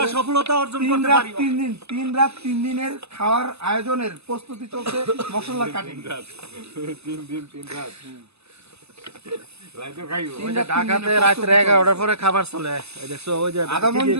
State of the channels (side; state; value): left; late; 0.79 ms